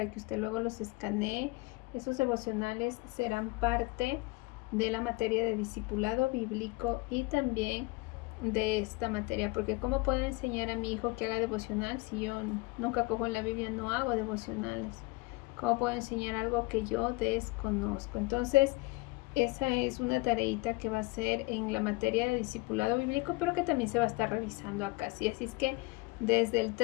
que usted luego los escanee. Esos devocionales serán parte de la materia de discipulado bíblico y también de esta materia, porque ¿cómo puedo enseñar a mi hijo que haga devocional si yo nunca cojo en la Biblia, no hago devocionales? ¿Cómo puedo enseñar algo que yo desconozco? Entonces, esa es una tareita que va a ser en la materia de discipulado bíblico, pero que también se va a estar revisando acá. ¿Sí? Así es que desde el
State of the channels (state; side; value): quieter; right; 23.8 dB